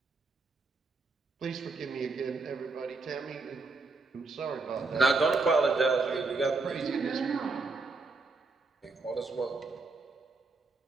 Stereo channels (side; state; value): left; quieter; 3.8 dB